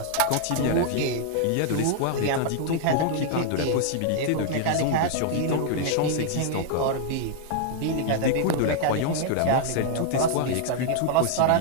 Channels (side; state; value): both; different; correlation 0.00